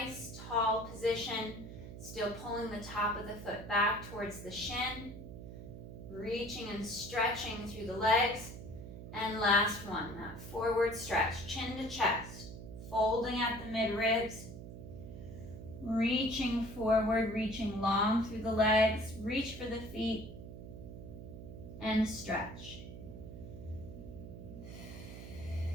tall position, still pulling the top of the foot back towards the shin, reaching and stretching through the legs. And last one, that forward stretch, chin to chest, folding at the midribs. Reaching forward, reaching long through the legs, reach for the feet, and stretch.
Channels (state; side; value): noise; right; hum, 11 dB below the sound